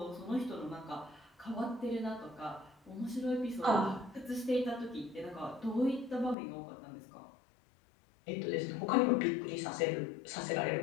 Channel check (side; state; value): right; drops out; at 6.4 s